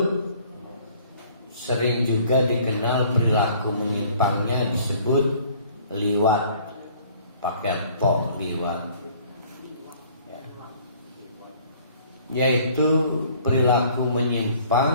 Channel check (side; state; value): both; inverted; correlation -0.56